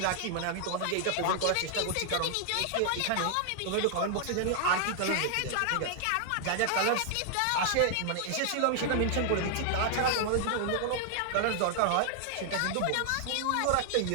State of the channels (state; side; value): different; both; correlation 0.00